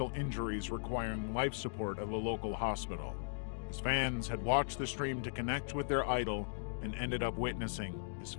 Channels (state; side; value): silent; right; digital silence